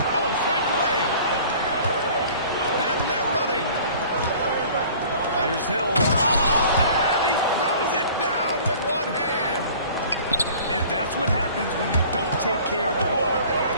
Oh, swiped away. And they're running. Here's Hill. And he throws it down with one hand. And that's what happens when you don't take care of the ball.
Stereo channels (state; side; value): inverted; both; correlation -0.48